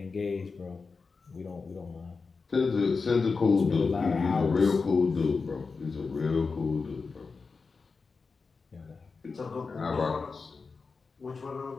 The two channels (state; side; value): quieter; right; 4.6 dB